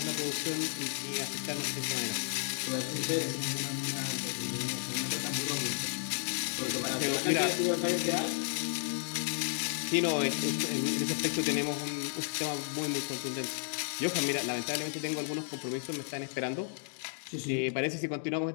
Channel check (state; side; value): silent; right; digital silence